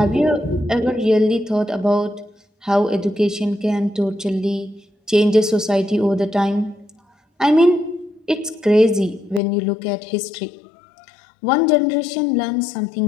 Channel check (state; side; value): drops out; right; at 9.4 s